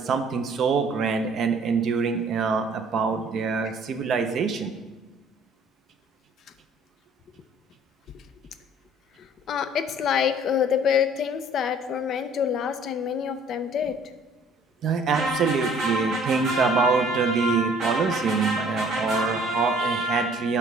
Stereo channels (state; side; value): normal; both; correlation 0.55